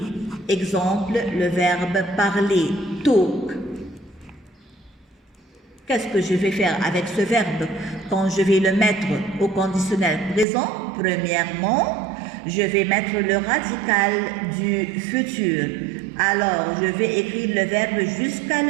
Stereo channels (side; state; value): left; drops out; at 10.5 s